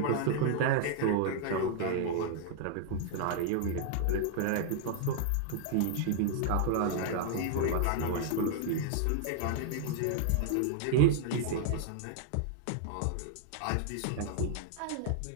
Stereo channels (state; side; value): different; both; correlation 0.00